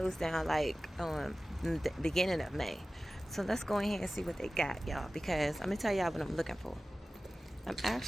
down like the beginning of May. So let's go ahead and see what they got, y'all, because I'm gonna tell y'all what I'm looking for. I'm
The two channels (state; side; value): normal; both; correlation 0.96